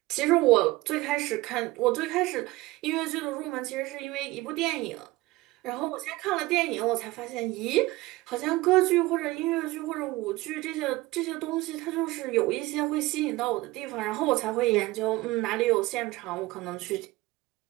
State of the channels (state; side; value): quieter; left; 19.5 dB